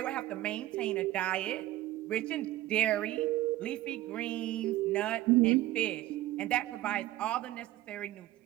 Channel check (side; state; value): left; quieter; 15.6 dB